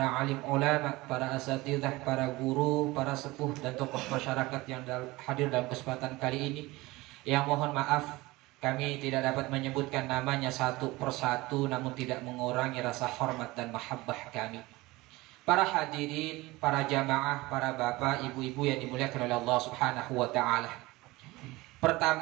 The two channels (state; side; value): quieter; left; 20.6 dB